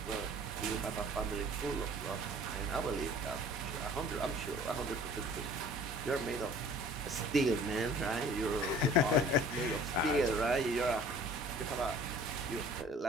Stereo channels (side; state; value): both; normal; correlation 0.49